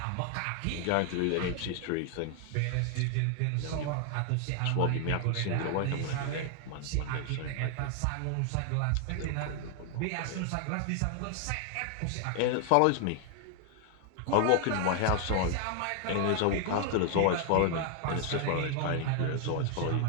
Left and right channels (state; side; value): different; both; correlation 0.00